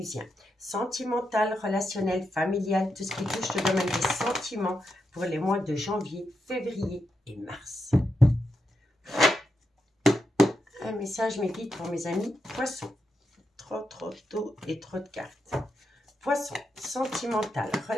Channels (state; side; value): normal; both; correlation 0.85